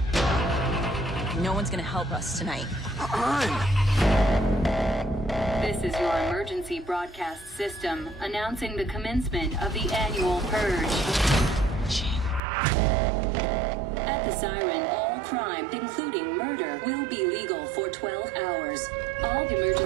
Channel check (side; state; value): left; drops out; at 12.4 s